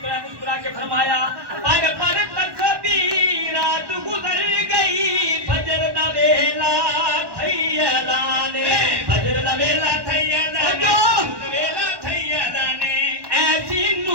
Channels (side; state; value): left; late; 1.1 ms